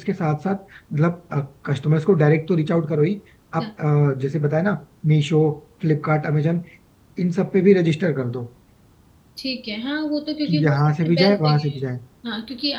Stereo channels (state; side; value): identical; both; correlation 1.00